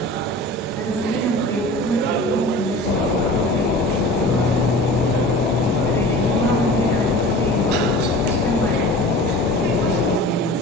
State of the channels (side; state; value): both; normal; correlation 0.39